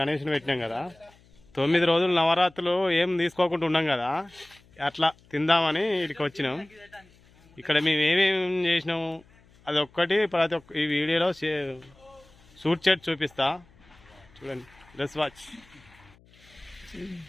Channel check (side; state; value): left; noise; hum, 28 dB below the sound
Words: పెట్టినాం కదా, 9 రోజులు నవరాత్రులు ఏం తీసుకోకుండా ఉన్నాం కదా, అట్లా తిందామని ఇక్కడికి వచ్చినాం. ఇక్కడ మేము ఏమేమి చేసినాము అది ఒక్కటి ప్రతి ఒక్క ఈ వీడియోలో షూట్ చేసి చూపిస్తా, చూడండి. Let's watch.